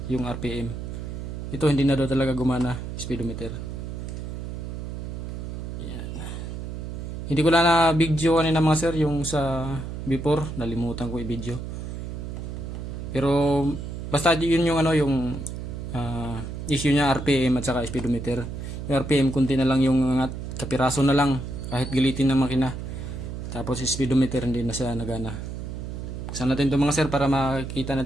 yung RPM. Ito hindi na daw talaga gumana, speedometer. Yan. Hindi ko na video kanina mga sir, yung sa before, nalimutan ko i-video. Pero basta yun yung issue niya, RPM at saka speedometer. Yung RPM kunti na lang yung angat, kapiraso na lang kahit galitin ng makina. Tapos speedometer hindi na siya nagana. Buksan natin ito mga sir para makita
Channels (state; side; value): noise; right; hum, 7 dB below the sound